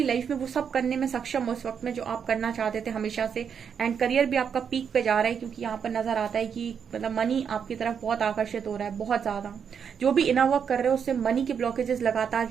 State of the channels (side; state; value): left; quieter; 7.2 dB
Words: लाइफ में वो सब करने में सक्षम हो उस वक्त में जो आप करना चाहते थे हमेशा से। एंड करियर भी आपका पीक पे जा रहा है, क्योंकि यहाँ पर नजर आता है कि मतलब मनी आपकी तरफ बहुत आकर्षित हो रहा है, बहुत ज्यादा। जो भी इनर वर्क कर रहे हो उससे मनी के ब्लॉकेजेस लगातार